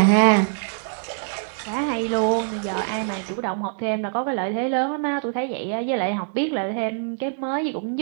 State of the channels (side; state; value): left; silent; digital silence